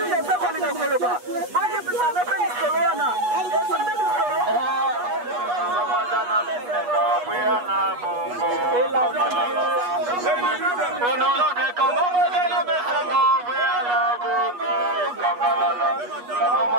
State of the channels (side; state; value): left; late; 8.3 ms